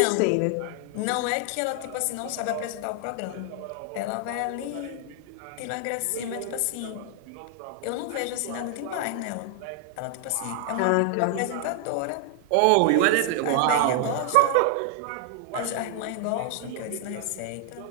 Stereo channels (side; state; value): both; different; correlation 0.00